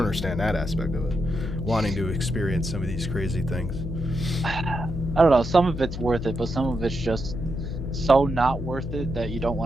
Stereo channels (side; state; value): left; noise; hum, 7 dB below the sound